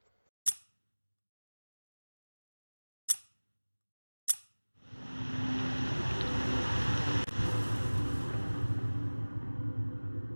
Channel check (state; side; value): inverted; both; correlation -1.00